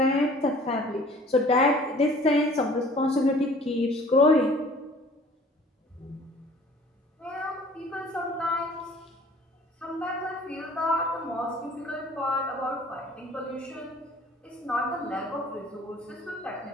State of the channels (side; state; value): both; normal; correlation 0.51